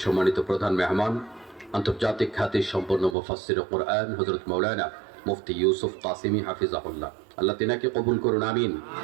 সম্মানিত প্রধান মেহমান, আন্তর্জাতিক খ্যাতি সম্পন্ন মুফাসসির কোরআন হযরত মাওলানা মুফতি ইউসুফ কাসিমি হাফিজাহুল্লাহ, আল্লাহ তিনাকে কবুল করুন, আমিন।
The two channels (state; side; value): drops out; left; at 3.2 s